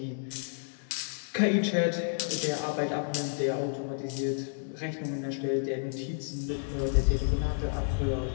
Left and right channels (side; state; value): right; silent; digital silence